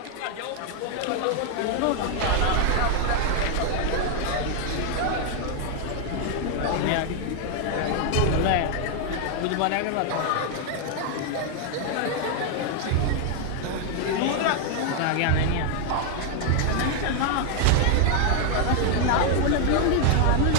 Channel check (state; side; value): different; both; correlation 0.00